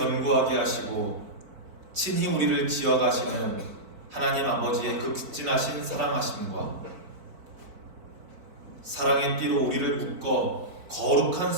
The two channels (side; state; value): left; late; 4.5 ms